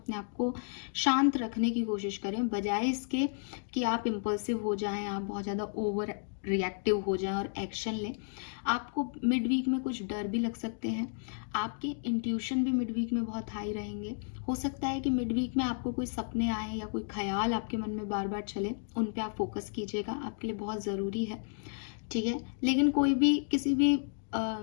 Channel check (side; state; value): right; silent; 56 dB below the other